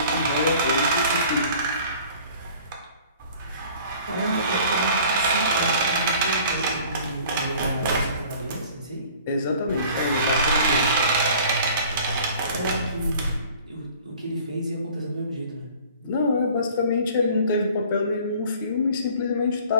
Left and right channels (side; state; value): both; inverted; correlation -0.49